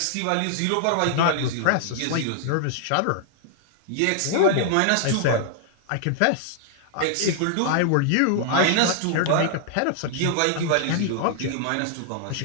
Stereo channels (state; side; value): different; both; correlation -0.01